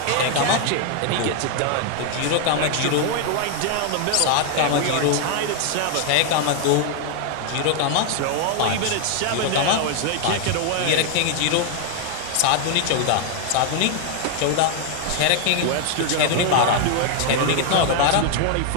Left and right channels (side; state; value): both; different; correlation 0.00